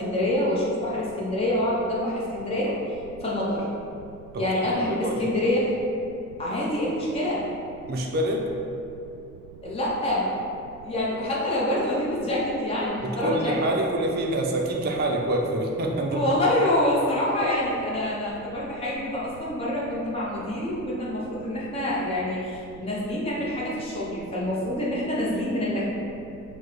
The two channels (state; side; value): noise; right; rumble, 19 dB below the sound